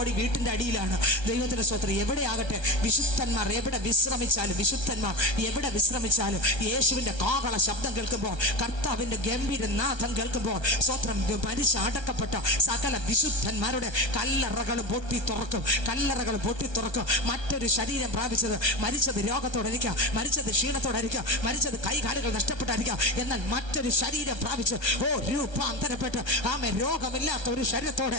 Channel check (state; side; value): late; right; 1.3 ms